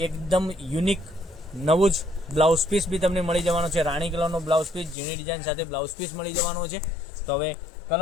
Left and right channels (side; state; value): right; drops out; at 5.0 s